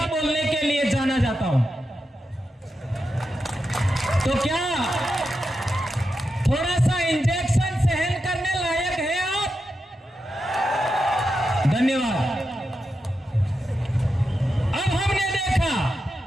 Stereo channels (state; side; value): normal; both; correlation 0.88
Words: बोलने के लिए जाना जाता हूं। तो क्या थोड़ा सा इंजेक्शन सहन करने लायक है आप? धन्यवाद। अब हमने देखा